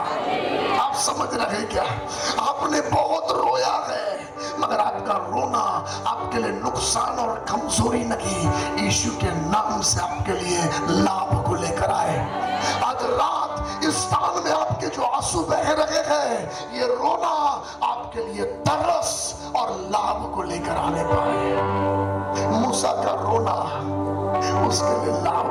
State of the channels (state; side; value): identical; both; correlation 1.00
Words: आप समझ रहे क्या? आपने बहुत रोया है, मगर आपका रोना आपके लिए नुकसान और कमजोरी नहीं, यीशु के नाम से आपके लिए लाभ को लेकर आए। आज रात इस स्थान में आपके जो आंसू बह रहे हैं, ये रोना आपके लिए तरस और लाभ को लेकर आने पाए। मूसा का रोना उसके लिए लाभ